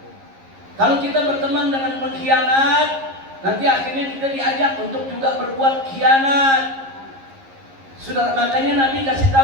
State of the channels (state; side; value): late; left; 11 ms